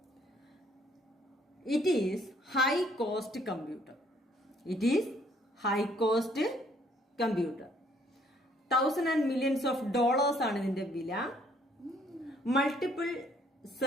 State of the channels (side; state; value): both; normal; correlation 0.64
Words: It is high cost computer. It is high cost computer. Thousands and millions of dollars ആണ് ഇതിന്റെ വില. Multiple